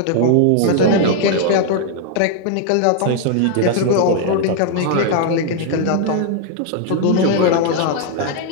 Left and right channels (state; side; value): different; both; correlation 0.00